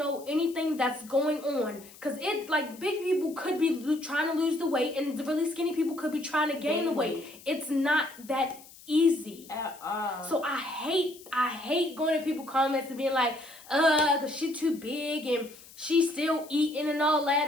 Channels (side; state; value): left; noise; hiss, 21 dB below the sound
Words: anything that's going on. Because big people could be trying to lose the weight and the really skinny people could be trying to gain the weight. It's not that easy at all. So I hate going to people comments and being like, cause she's too big and she's still eating and all that,